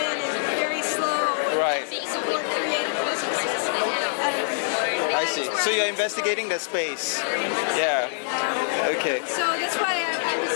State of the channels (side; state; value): right; silent; digital silence